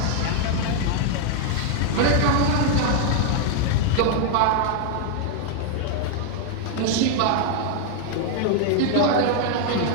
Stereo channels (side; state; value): both; different; correlation 0.00